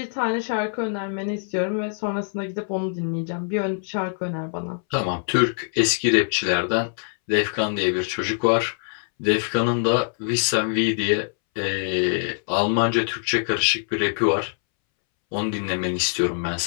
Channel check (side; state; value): right; silent; 63 dB below the other